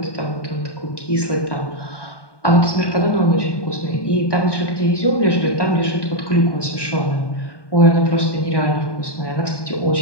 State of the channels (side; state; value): right; late; 1.2 ms